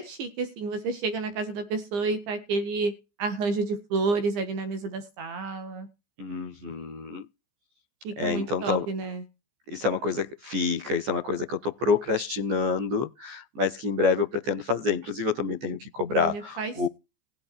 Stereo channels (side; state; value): left; late; 14 ms